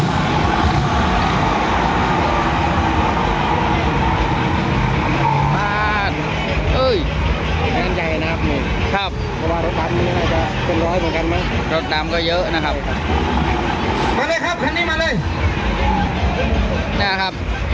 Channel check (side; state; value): both; identical; correlation 1.00